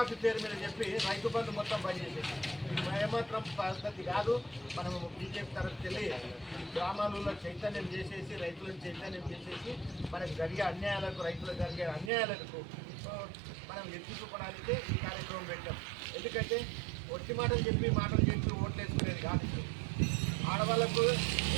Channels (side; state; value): left; drops out; at 12.1 s